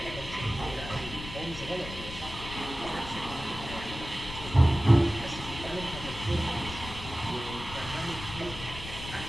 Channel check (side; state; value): left; noise; rumble, 11 dB below the sound